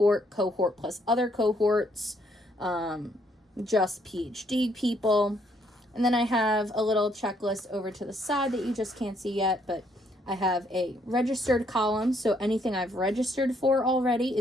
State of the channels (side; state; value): both; normal; correlation 0.70